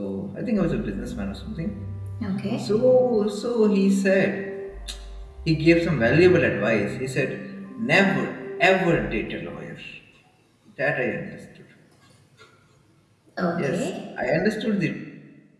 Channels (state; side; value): identical; both; correlation 1.00